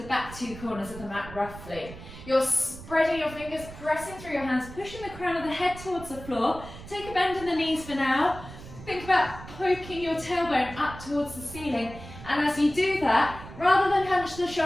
back 2 corners of the mat roughly. You're spreading your fingers, pressing through your hands, pushing the crown of the head towards the floor. Take a bend in the knees for now. Think about poking your tailbone up towards the ceiling. And as you do that, rather than hunch the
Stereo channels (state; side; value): noise; right; rumble, 14 dB below the sound